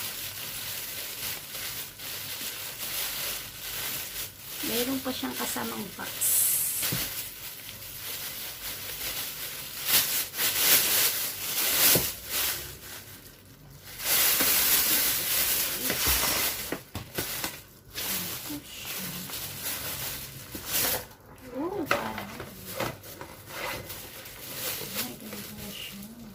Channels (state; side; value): identical; both; correlation 1.00